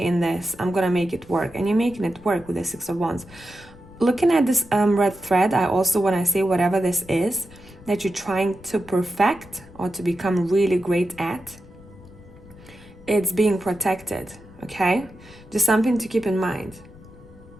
in this. I'm gonna make it work. And you're making it work with the Six of Wands. Looking at this red thread, I also, when I say whatever this is, that you're trying to perfect or to become really great at, it's being protected, okay? Just something to keep in mind.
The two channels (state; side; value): noise; left; rumble, 21 dB below the sound